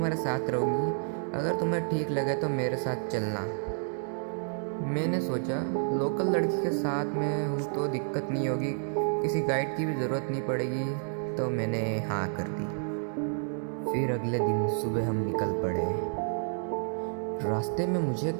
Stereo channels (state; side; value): silent; left; 58 dB below the other